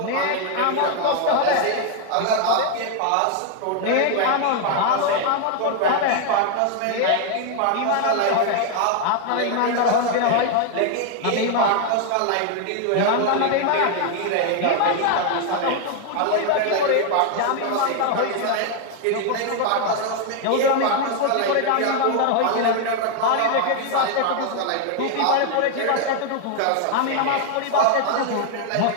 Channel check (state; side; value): different; both; correlation 0.01